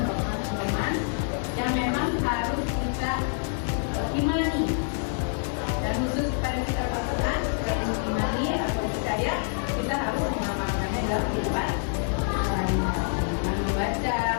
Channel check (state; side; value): silent; right; 60 dB below the other